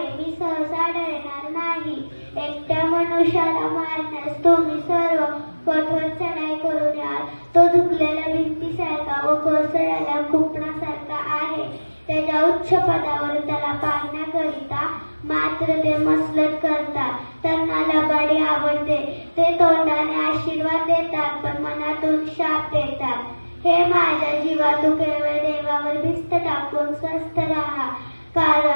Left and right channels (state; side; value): inverted; both; correlation -1.00